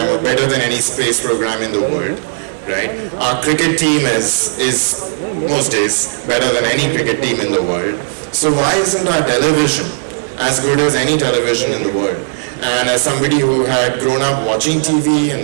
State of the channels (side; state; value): left; silent; digital silence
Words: or better than any space program in the world. Right? Our cricket team is most days better than any cricket team in the world. So why isn't our television as good as any television in the world? And as somebody who had grown up watching TV